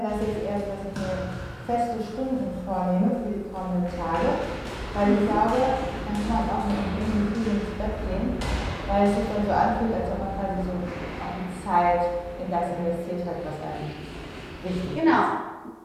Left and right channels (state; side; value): identical; both; correlation 1.00